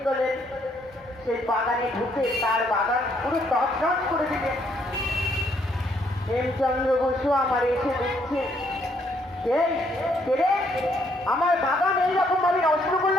করলেন, সেই বাগানে ঢুকে তার বাগান পুরো তছনছ করে দিলেন। হেমচন্দ্র বসু আমার এসে দেখছে, আমার বাগান এইরকম ভাবে নষ্ট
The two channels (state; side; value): normal; both; correlation 0.70